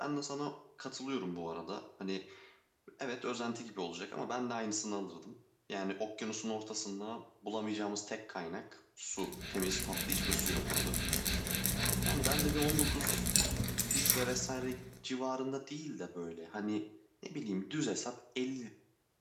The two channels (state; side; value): identical; both; correlation 1.00